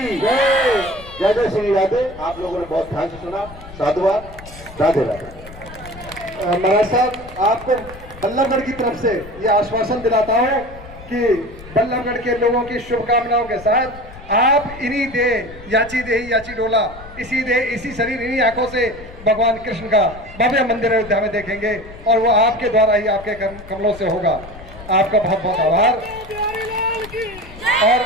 जय। जय जय श्री राधे। आप लोगों ने बहुत ध्यान से सुना। साधुवाद। राधे राधे। महाराज साहब, आपको बल्लभगढ़ की तरफ से ये आश्वासन दिलाता हूँ कि बल्लभगढ़ के लोगों की शुभकामनाओं के साथ आप इन्हीं देह याची देही याची डोला, इसी देह इसी शरीर इन्हीं आंखों से भगवान कृष्ण का भव्य मंदिर अयोध्या में देखेंगे और वो आपके द्वारा ही आपके कमलों से होगा। आपका बहुत बहुत आभार। और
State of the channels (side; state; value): left; noise; rumble, 17 dB below the sound